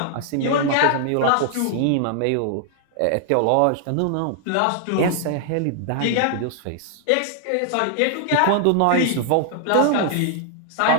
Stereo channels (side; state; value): both; different; correlation 0.00